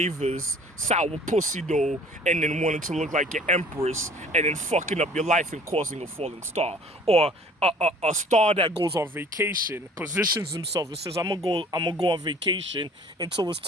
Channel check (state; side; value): normal; both; correlation 0.51